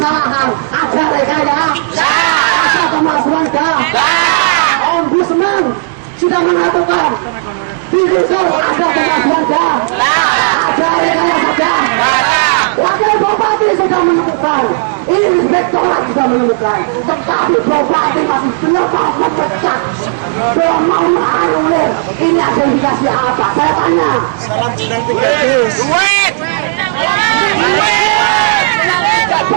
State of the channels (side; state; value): left; silent; digital silence